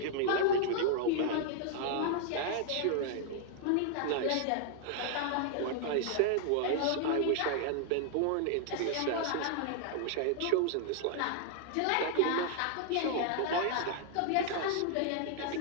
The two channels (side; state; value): both; different; correlation 0.00